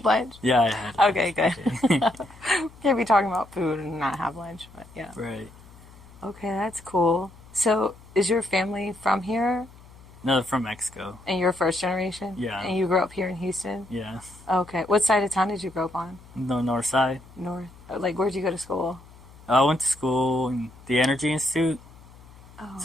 lunch? yeah, I had. Okay, good. Can't be talking about food and not have lunch, but yeah. Right. Okay, that's cool. So, is your family from here? No, they're from Mexico. And you're first generation? Yeah. And you grew up here in Houston? Yeah, Okay. What side of town did you grow up on? the north side. North? Like, where'd you go to school? I went to school in the Energy Institute, Oh,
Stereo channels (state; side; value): noise; left; hum, 22 dB below the sound